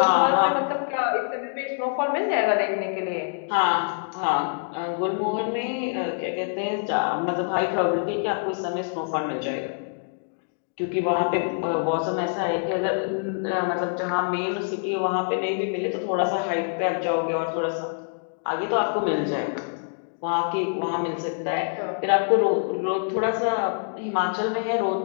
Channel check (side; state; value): right; silent; digital silence